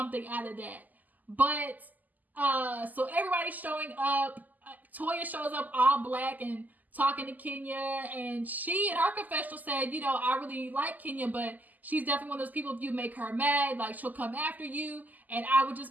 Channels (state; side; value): late; left; 0.082 ms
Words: out of that. But, so everybody's showing up. Toya shows up all black and talking to Kenya, and she in her confessional said, you know, I really like Kenya, but she's definitely one of those people, if you make her mad, like, she'll come after you, and I would